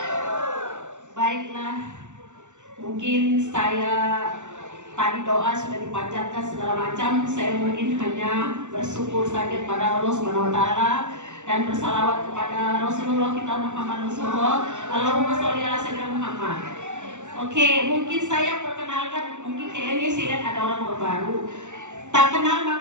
Baiklah, mungkin saya tadi doa sudah dipanjatkan segala macam. Saya mungkin hanya bersyukur saja kepada Allah Subhanahu wa taala dan bersalawat kepada Rasulullah kita Muhammad Rasulullah. Allahumma sholli ala sayyidina Muhammad. Oke, mungkin saya perkenalkan, mungkin kayaknya saya lihat ada orang baru. Tak kenal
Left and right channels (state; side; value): late; left; 0.84 ms